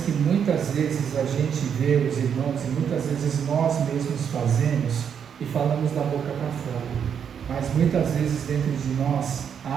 que muitas vezes a gente vê os irmãos e muitas vezes nós mesmos fazemos e falamos da boca para fora. Mas muitas vezes dentro de nós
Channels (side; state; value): left; quieter; 7.8 dB